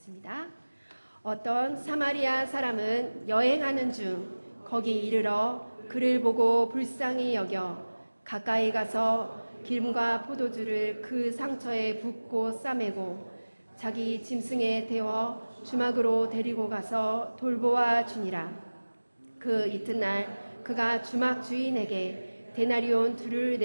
어떤 사마리아 사람은 여행하는 중 거기 이르러 그를 보고 불쌍히 여겨 가까이 가서 기름과 포도주를 그 상처에 붓고 싸매고 자기 짐승에 태워 주막으로 데리고 가서 돌보아 주니라. 그 이튿날 그가 주막 주인에게 데나리온 2를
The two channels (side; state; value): both; inverted; correlation -1.00